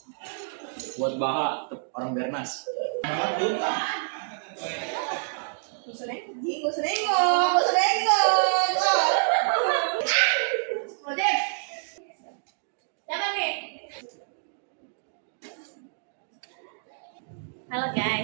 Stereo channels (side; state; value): left; silent; digital silence